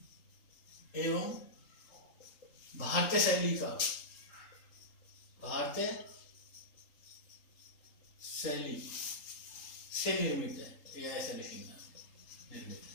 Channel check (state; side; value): late; right; 3.8 ms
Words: एवं भारतीय शैली से निर्मित है, या ऐसा लिखना, निर्मित।